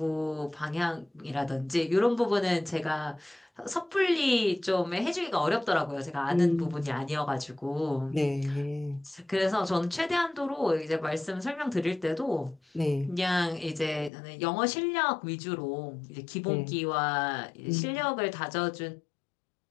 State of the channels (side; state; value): right; drops out; at 14.1 s